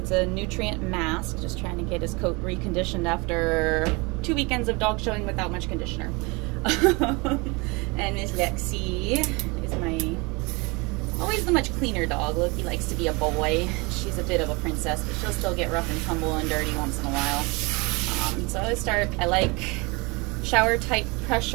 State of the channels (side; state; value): left; quieter; 27.0 dB